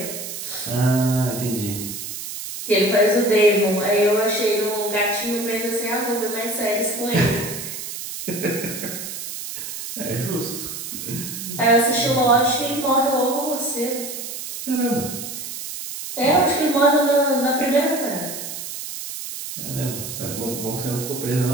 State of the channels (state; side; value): noise; right; hiss, 8 dB below the sound